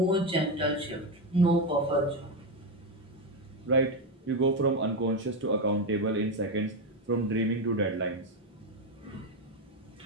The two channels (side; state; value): both; normal; correlation 0.10